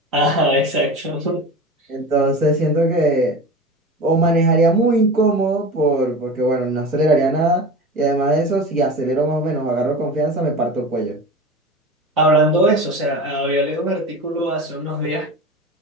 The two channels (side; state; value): both; normal; correlation 0.30